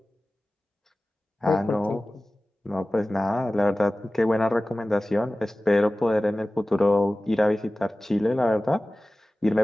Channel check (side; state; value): both; normal; correlation 0.97